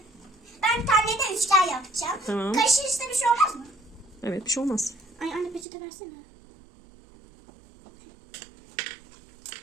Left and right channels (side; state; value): left; drops out; at 5.7 s